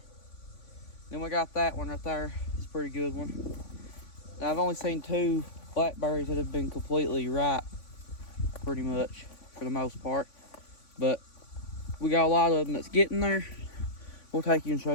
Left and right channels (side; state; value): right; late; 3.5 ms